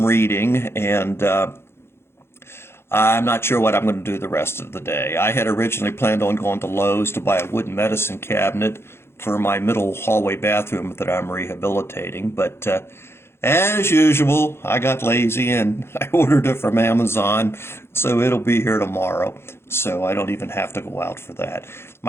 reading, and I'm not sure what I'm going to do the rest of the day. I had originally planned on going to Lowe's to buy a wooden medicine cabinet for my middle hallway bathroom that I'm rehabilitating, but as usual, I got lazy and I ordered it from Amazon, so it'll be here tomorrow, so I don't even have to go out for that.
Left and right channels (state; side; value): late; right; 0.12 ms